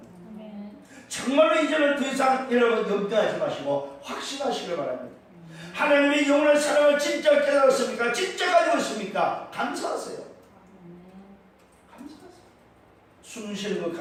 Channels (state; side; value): identical; both; correlation 1.00